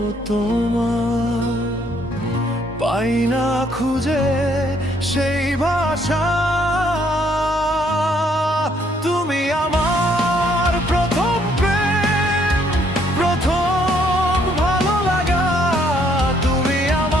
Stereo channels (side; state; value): both; normal; correlation 0.67